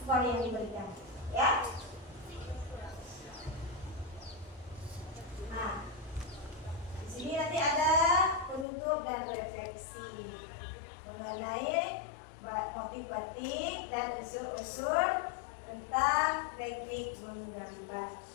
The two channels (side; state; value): right; drops out; at 8.7 s